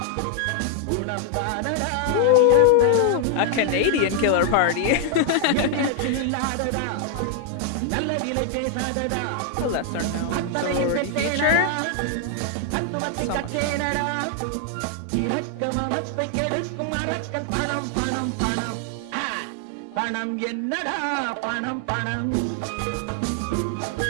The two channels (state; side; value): different; both; correlation 0.00